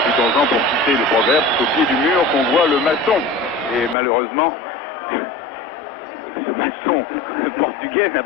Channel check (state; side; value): drops out; right; at 4.0 s